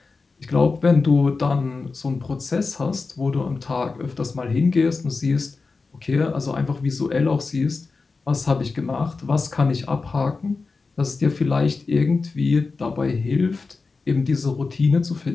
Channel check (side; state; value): right; quieter; 4.2 dB